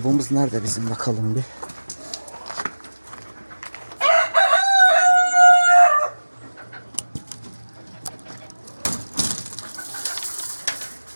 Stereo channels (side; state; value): both; inverted; correlation -1.00